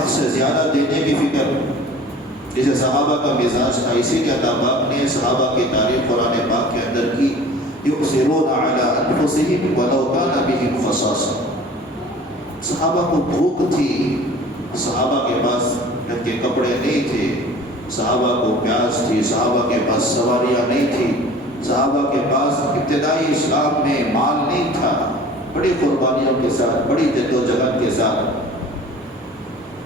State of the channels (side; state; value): both; normal; correlation 0.45